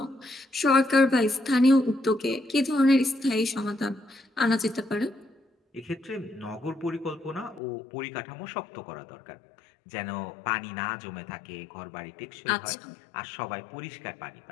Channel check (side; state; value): right; drops out; at 7.6 s